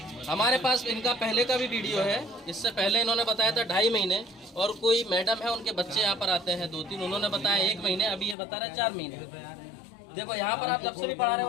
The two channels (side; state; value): right; drops out; at 8.3 s